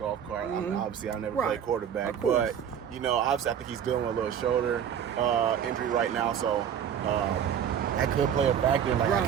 cart. I mean, obviously I never played quarterback, but obviously I think he's dealing with a little shoulder injury right now. So that could play a factor. Like, I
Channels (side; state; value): left; quieter; 8.7 dB